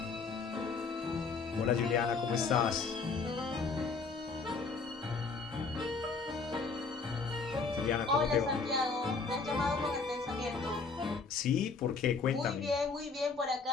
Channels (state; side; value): quieter; right; 4.6 dB